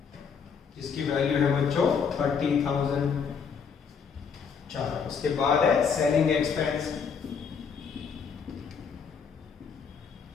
जिसकी वैल्यू है बच्चों 30,000। चलो उसके बाद है सेलिंग एक्सपेंस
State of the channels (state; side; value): quieter; right; 6.3 dB